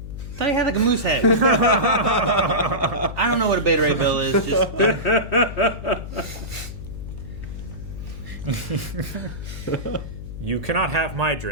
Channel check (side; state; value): left; noise; hum, 10 dB below the sound